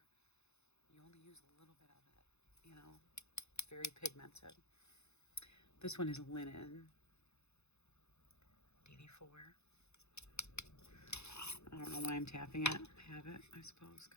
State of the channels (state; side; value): late; right; 0.81 ms